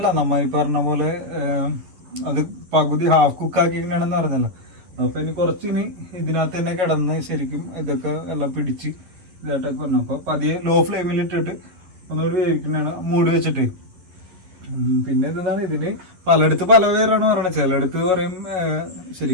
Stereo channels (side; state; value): left; late; 11 ms